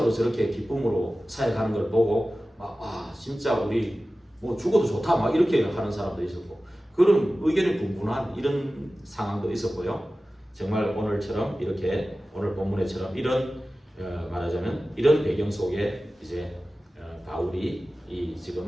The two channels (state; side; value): normal; both; correlation 0.96